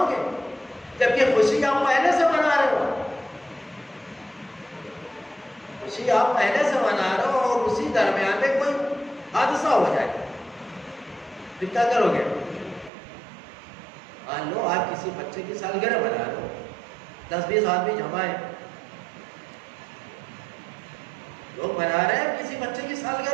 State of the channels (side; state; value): left; drops out; at 12.9 s